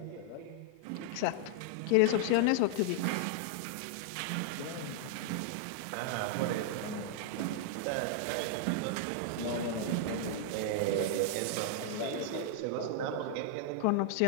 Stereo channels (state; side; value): different; both; correlation -0.01